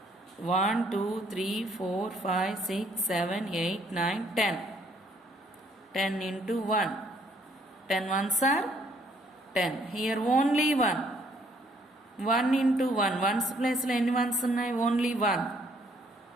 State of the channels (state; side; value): normal; both; correlation 0.65